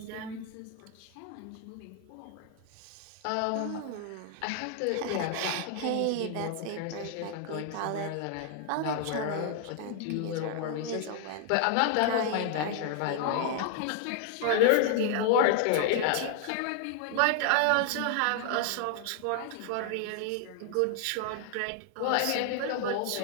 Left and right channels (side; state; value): both; different; correlation 0.00